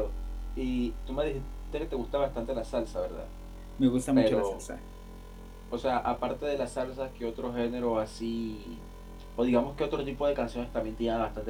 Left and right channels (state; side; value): identical; both; correlation 1.00